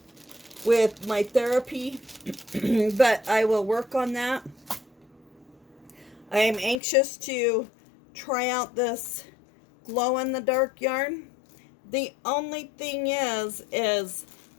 with my therapy. But I will work on that. I am anxious to try out this glow-in-the-dark yarn. The only thing is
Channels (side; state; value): right; drops out; at 6.8 s